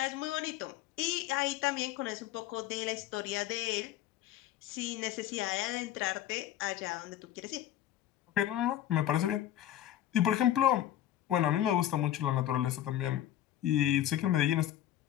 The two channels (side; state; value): right; quieter; 12.4 dB